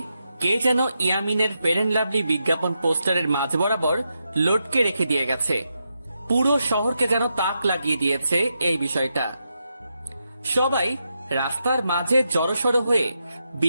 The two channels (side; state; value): both; inverted; correlation -0.85